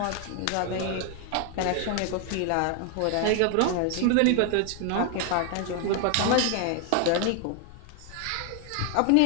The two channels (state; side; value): different; both; correlation 0.01